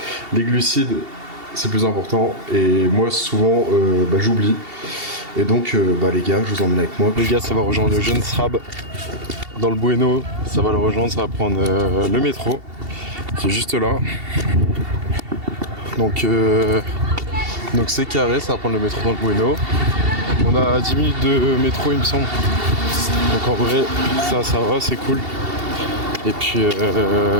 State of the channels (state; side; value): late; left; 2.7 ms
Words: les glucides c'est plus important et moi souvent j'oublie. Et donc les gars, je vous emmène avec moi. Les gars, ça va rejoindre le jeune Srab dans le Bueno. Ça va le rejoindre, ça va prendre le métro. C'est juste là. Donc c'est carré, ça va prendre le métro dans le Bueno. On a 10 minutes de métro il me semble. Donc en vrai ça va, c'est cool. Et puis